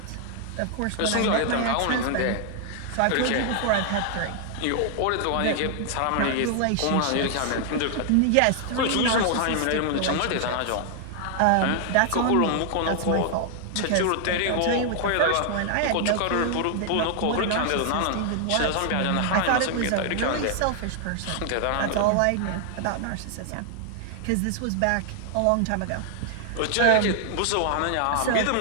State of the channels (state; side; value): different; both; correlation 0.00